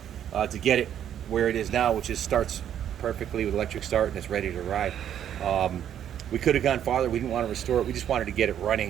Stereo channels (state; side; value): quieter; left; 10.0 dB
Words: to get it where it is now, which is starts perfectly with electric start and it's ready to ride. We could have gone farther. We didn't want to restore it. We just wanted to get it running